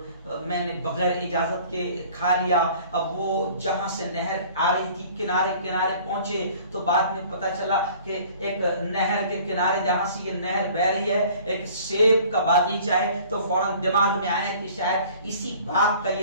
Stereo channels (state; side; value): inverted; both; correlation -0.50